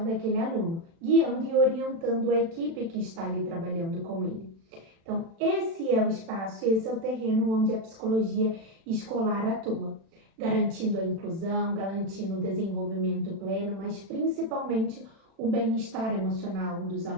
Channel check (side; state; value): left; late; 36 ms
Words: daquele aluno, guiando e orientando a equipe que está ali trabalhando com ele. Então, esse é o espaço, esse é o terreno onde a psicologia escolar atua, garantindo a inclusão, garantindo o desenvolvimento pleno, mas principalmente o bem-estar emocional dos